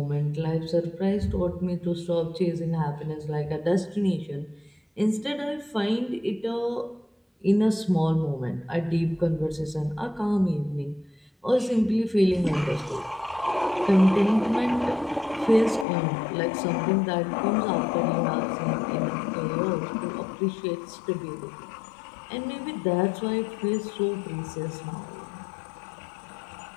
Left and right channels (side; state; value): right; drops out; at 15.9 s